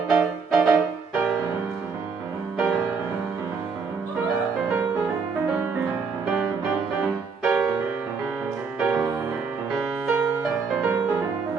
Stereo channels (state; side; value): quieter; left; 5.2 dB